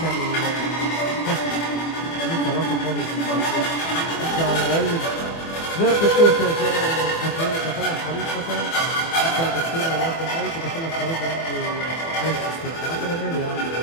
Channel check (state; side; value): late; right; 24 ms